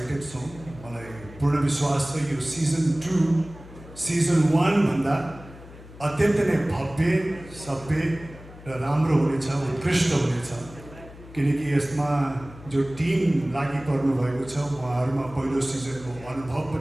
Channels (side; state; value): left; noise; hum, 18 dB below the sound